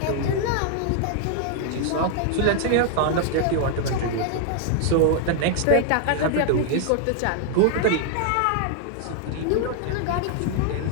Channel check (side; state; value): both; different; correlation 0.00